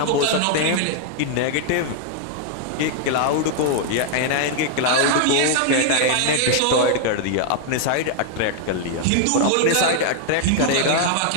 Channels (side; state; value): both; different; correlation 0.00